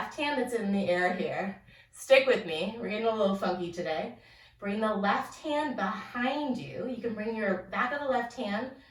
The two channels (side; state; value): both; identical; correlation 1.00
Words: hand that's in the air here, stick with me. We're getting a little funky today. Bring the left hand behind you. You can bring your back of the left hand